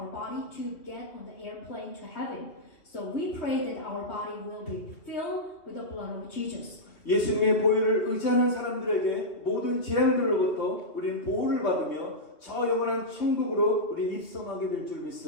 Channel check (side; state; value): right; late; 2.5 ms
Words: body to get on the airplane to heaven, so we pray that our body will be filled with the blood of Jesus. 예수님의 보혈을 의지하는 사람들에게 모든 재앙들로부터 우리는 보호를 받으며 저 영원한 천국으로 우리 입성하게 될 줄